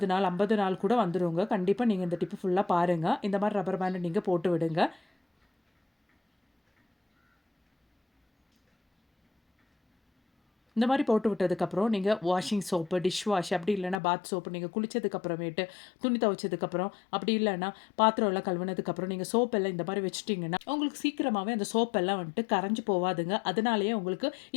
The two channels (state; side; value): drops out; right; at 14.0 s